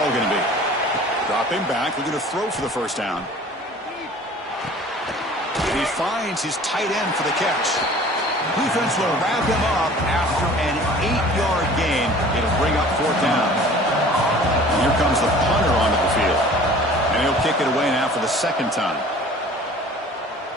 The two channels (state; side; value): normal; both; correlation 0.47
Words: going to be? Drop him back. We're going to throw for the first down. He finds his tight end for the catch. Defense will wrap him up after an 8-yard gain. It'll bring up 4th down. Here comes the punter onto the field. And he'll kick it away now for the 2nd time.